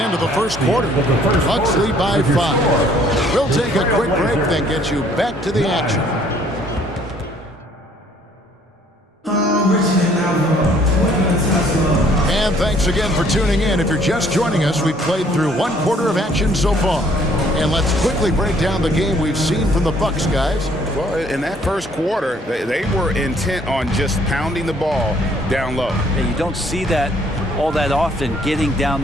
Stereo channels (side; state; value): both; normal; correlation 0.61